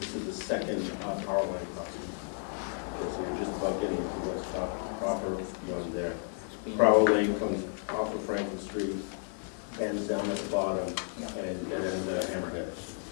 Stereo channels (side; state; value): right; silent; 56 dB below the other